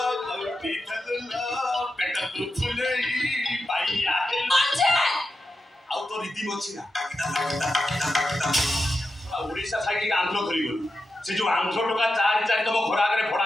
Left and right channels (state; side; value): normal; both; correlation 0.89